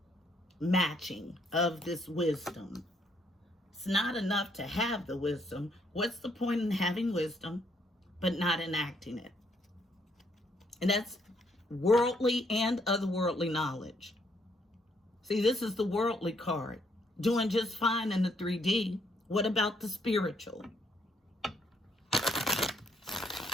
matching of this wisdom. It's not enough to have the wisdom. What's the point in having wisdom, but not enacting it? And that's worldly and otherworldly knowledge. See, this is the worldly card. Doing just fine in the 3D. What about the spiritual?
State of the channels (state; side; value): normal; both; correlation 0.71